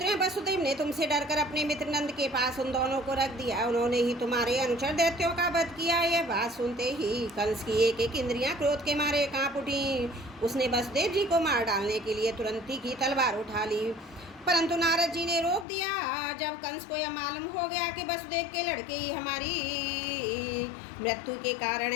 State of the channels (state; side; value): drops out; right; at 15.7 s